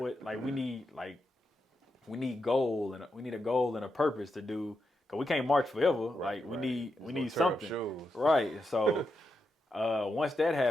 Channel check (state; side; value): normal; both; correlation 0.86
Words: We need goal, and we need a goal and a purpose to do, because we can't march forever. We need something. Right. And so once that